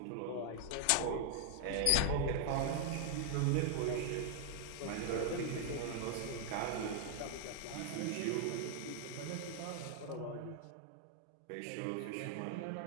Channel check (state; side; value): different; both; correlation 0.00